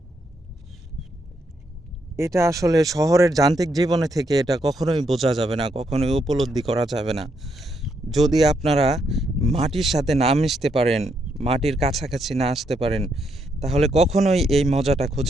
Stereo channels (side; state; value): both; normal; correlation 0.77